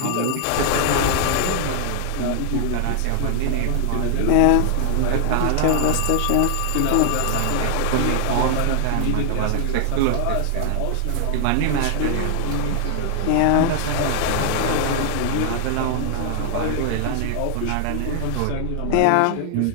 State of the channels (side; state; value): both; different; correlation 0.00